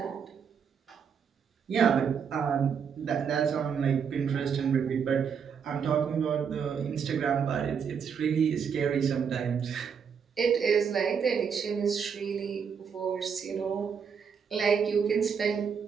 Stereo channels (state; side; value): quieter; left; 6.8 dB